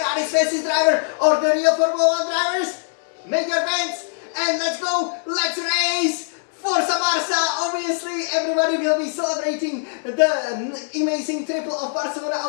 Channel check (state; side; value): silent; right; 57 dB below the other